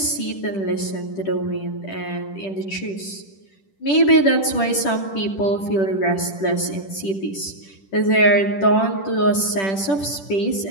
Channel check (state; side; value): late; right; 10 ms